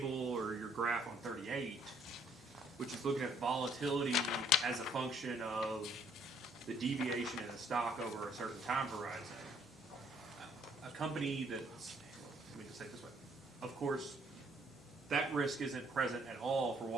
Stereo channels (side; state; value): both; normal; correlation 0.64